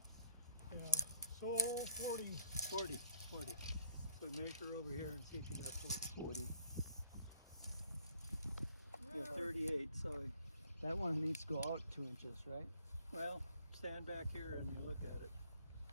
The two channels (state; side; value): inverted; both; correlation -0.64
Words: Yeah. So 40. 40. 40. So measure over here and see if you got 40. 40. Yeah, 38. So that one needs to go out 2 inches, right? Well, stand back here and you look at it.